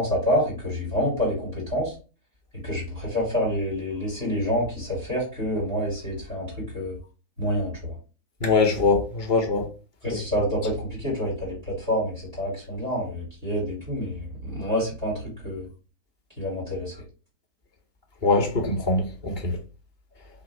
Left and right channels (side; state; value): left; late; 2.8 ms